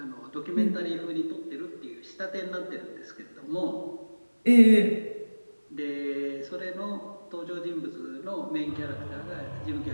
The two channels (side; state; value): both; inverted; correlation -1.00